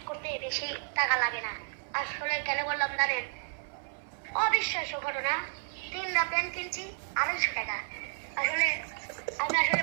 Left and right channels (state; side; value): silent; left; 57 dB below the other